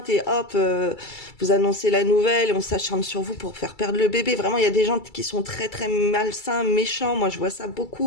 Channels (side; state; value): right; late; 2.3 ms